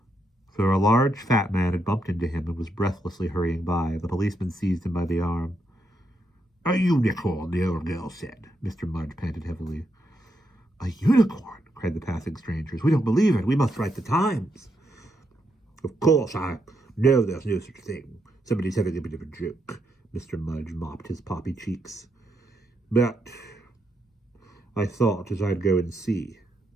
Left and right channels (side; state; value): both; normal; correlation 0.80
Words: For a large fat man had bumped into him and was breathlessly hurrying by. The policeman seized him by the arm. A unicorn, the old girl said. Mr. Mudge panted heavily. A unicorn, cried the passing strangers. We don't believe it. We must write the Times. Of course, I know there's no such thing. Somebody's having a bit of a joke. Mr. Mudge mopped his poppy cheeks. But I thought as I'd go and see.